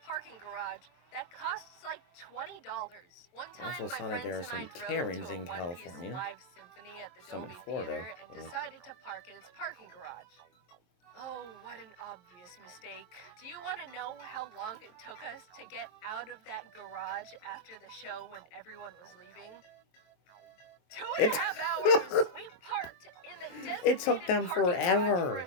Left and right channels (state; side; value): late; right; 23 ms